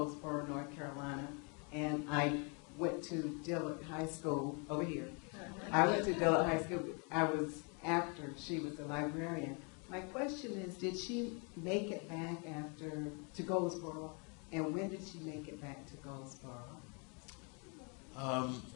North Carolina, and I went to Dillard High School over here. I went to Dillard High School. I was after she was a librarian. My question is, did she make it back to Goldsboro, and when did she make it back to Goldsboro?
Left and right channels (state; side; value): quieter; right; 35.1 dB